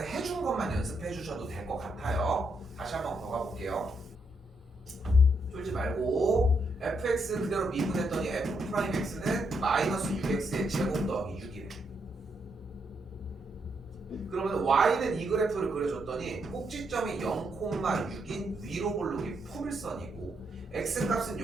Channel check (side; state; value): both; normal; correlation 0.78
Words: 해준 것만 연습해 주셔도 될 것 같아요. 다시 한번 더 가볼게요. 쫄지 말고 fx 그대로 미분했더니 f'x는 마이너스 6x의 제곱 더하기 6이래. 그러면 y는 이 그래프를 그려줬더니 꼭지점이 0,6인 위로 볼록이 포물선이고 x값은